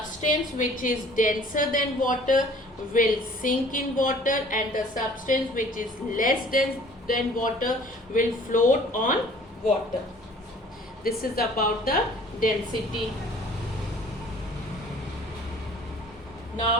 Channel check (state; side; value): normal; both; correlation 0.52